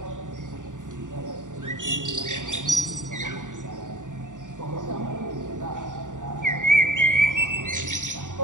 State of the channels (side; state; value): left; late; 0.87 ms